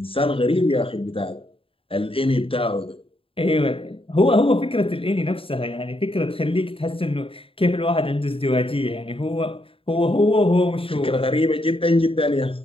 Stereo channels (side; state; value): right; late; 0.27 ms